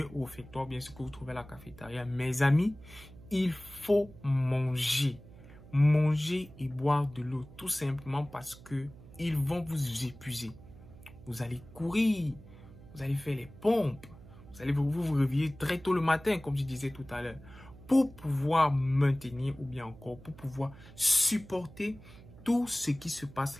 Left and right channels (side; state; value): right; noise; hum, 19 dB below the sound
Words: au réfectoire, bien ce que vous trouvez à la cafétéria, mes amis, il faut manger. Manger et boire de l'eau, tout simplement parce que ils vont vous épuiser. Vous allez courir, vous allez faire les pompes, vous allez vous réveiller très tôt le matin, comme je disais tout à l'heure, pour pouvoir maintenir ou bien encore pour pouvoir supporter tout ce qui se passe